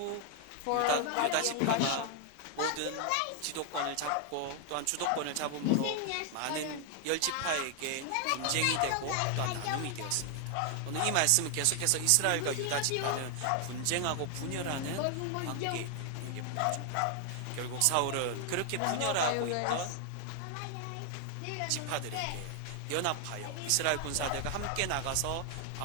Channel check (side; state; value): both; different; correlation 0.00